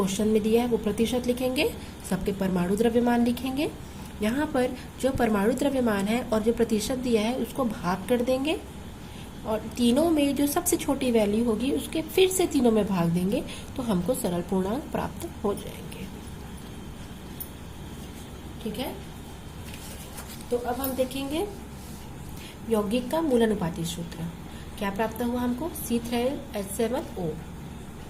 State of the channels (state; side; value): identical; both; correlation 1.00